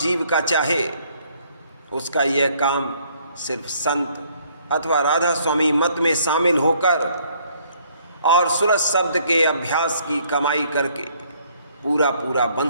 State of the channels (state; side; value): inverted; both; correlation -0.64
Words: का चाहे, उसका यह काम सिर्फ संत अथवा राधा स्वामी मत में शामिल होकर और सूरज शब्द के अभ्यास की कमाई करके पूरा पूरा बन